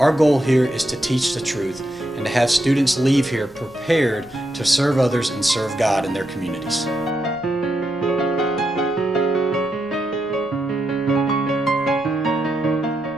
goal here is to teach the truth and to have students leave here prepared to serve others and serve God in their communities.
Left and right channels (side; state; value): right; noise; rumble, 26 dB below the sound